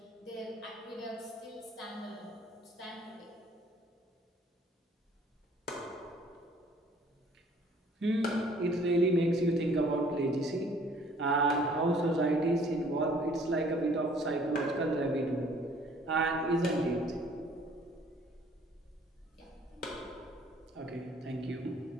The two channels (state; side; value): normal; both; correlation 0.57